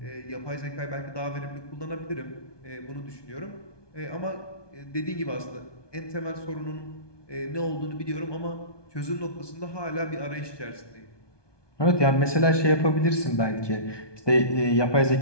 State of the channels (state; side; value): late; right; 1.2 ms